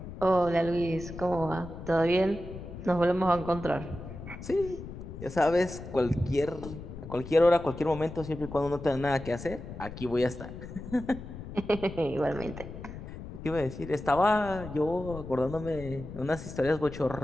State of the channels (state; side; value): noise; left; rumble, 11 dB below the sound